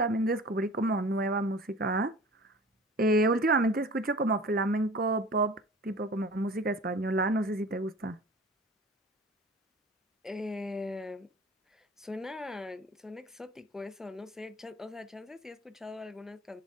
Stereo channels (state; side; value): normal; both; correlation 0.42